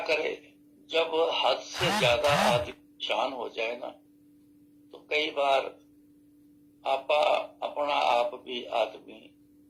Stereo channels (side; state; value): both; identical; correlation 1.00